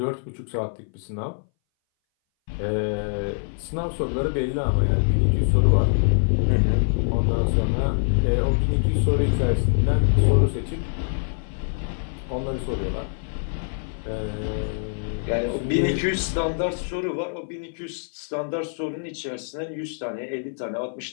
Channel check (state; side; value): silent; right; 60 dB below the other